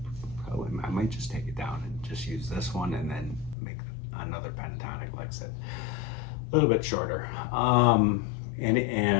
I might just take it down and just use this one, and then make another pentatonic lick set a little bit shorter. I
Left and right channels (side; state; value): right; drops out; at 3.6 s